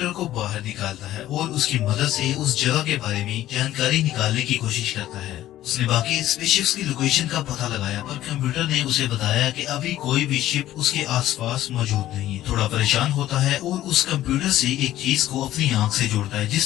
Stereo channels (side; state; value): right; quieter; 13.8 dB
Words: को बाहर निकालता है और उसकी मदद से उस जगह के बारे में जानकारी निकालने की कोशिश करता है। उसने बाकी स्पेसशिप्स की लोकेशन का पता लगाया पर कंप्यूटर ने उसे बताया कि अभी कोई भी शिप उसके आसपास मौजूद नहीं है। थोड़ा परेशान होता है और उस कंप्यूटर से एक चीज को अपनी आंख से जोड़ता है